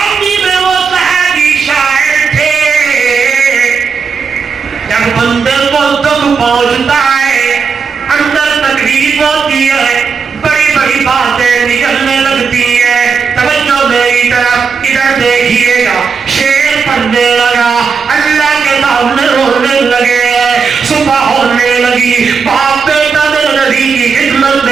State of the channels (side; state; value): left; quieter; 5.6 dB